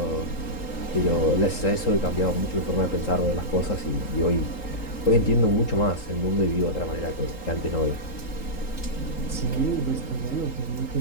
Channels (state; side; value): late; right; 3.8 ms